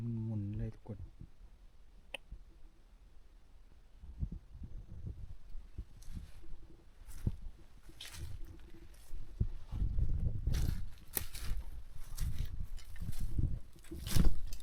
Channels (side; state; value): both; identical; correlation 1.00